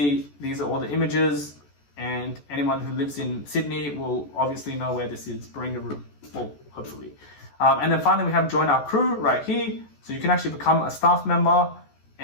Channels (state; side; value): late; right; 14 ms